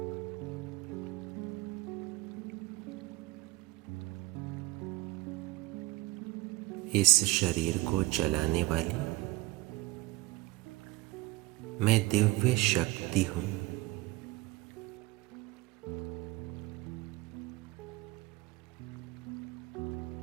इस शरीर को चलाने वाली मैं दिव्य शक्ति हूं।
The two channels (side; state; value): left; quieter; 19.7 dB